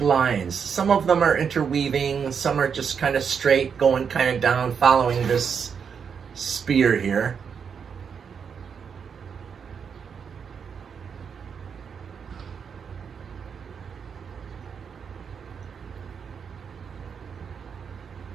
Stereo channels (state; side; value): quieter; left; 6.7 dB